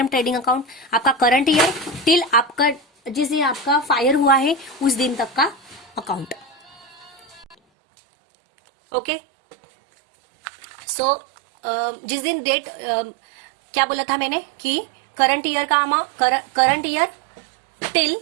trading account, आपका करंट ईयर टिल आपका जिस दिन आपका फायर हुआ है उस दिन तक का अकाउंट. ओके. सो जिस दिन डेट क्या बोला था मैंने कि current year current year till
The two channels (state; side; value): drops out; left; at 7.6 s